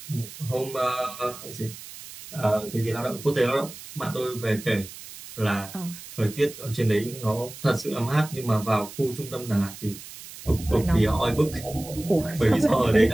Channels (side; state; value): right; noise; hiss, 15 dB below the sound